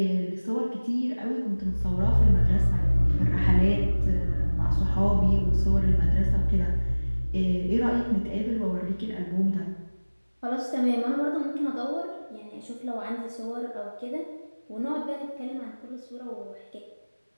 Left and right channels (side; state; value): both; inverted; correlation -1.00